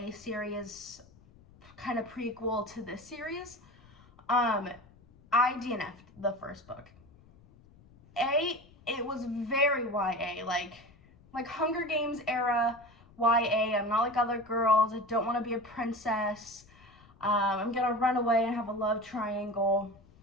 series, kind of prequel to this series. I DNF'd the first book. It was very YA, like Hunger Games era YA. I'm not like other girls. I don't want to be a princess. I'm gonna run away and have a love triangle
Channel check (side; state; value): left; noise; rumble, 26 dB below the sound